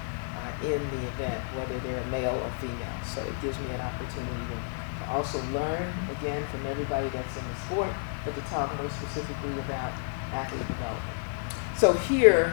in the event, whether they're male or female. So it gives me an opportunity to also learn, again, from everybody that's in the sport, but to talk more specifically about athlete development. So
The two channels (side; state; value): right; silent; 58 dB below the other